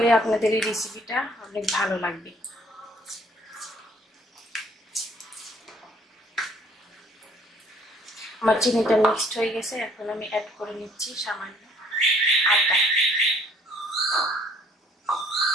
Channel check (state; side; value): normal; both; correlation 0.60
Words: আপনাদের এই রেসিপিটা অনেক ভালো লাগবে। আমার চিনিটা মিক্সড হয়ে গেছে। এখন আমি অ্যাড করে নিচ্ছি সামান্য আটা।